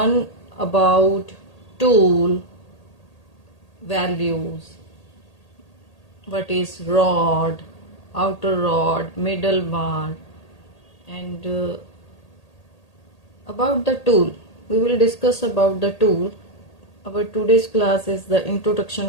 about tool, values, what is rod, outer rod, middle bar, and about the tool. We will discuss about the tool. Our today's class is the introduction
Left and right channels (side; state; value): right; late; 1.8 ms